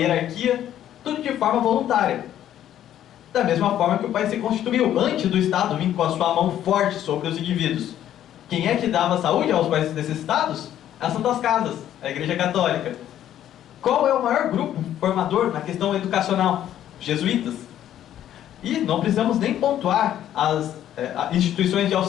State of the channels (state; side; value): quieter; right; 11.4 dB